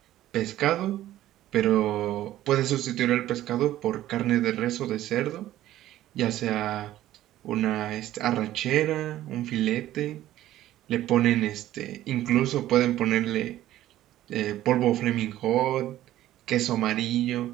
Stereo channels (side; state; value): left; quieter; 13.8 dB